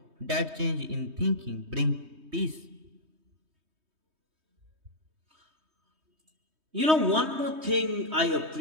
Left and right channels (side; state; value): left; late; 3.2 ms